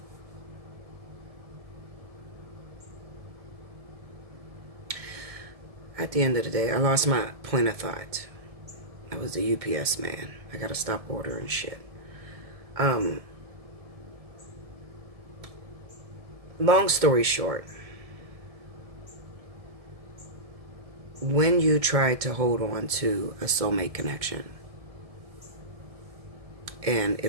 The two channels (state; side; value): late; left; 1.7 ms